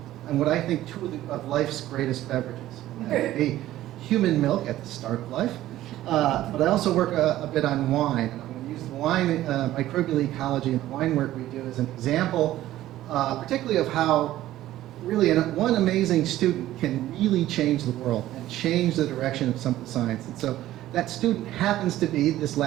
what I think two of life's greatest beverages. That would be human milk at the start of life. But I also work a bit on wine. And I'm going to use the wine microbial ecology and the wine work we do as an example, particularly of how really one amazing student can really change the world and change the direction of some of the science. And so that student happens to be this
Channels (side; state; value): left; quieter; 14.4 dB